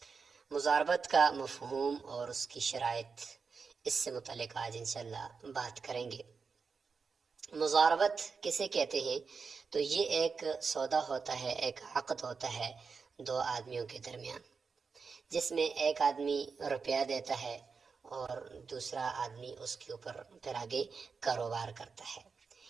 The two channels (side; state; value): left; quieter; 5.2 dB